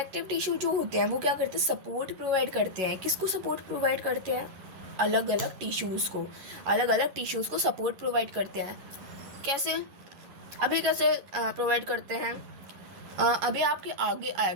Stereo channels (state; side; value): late; left; 11 ms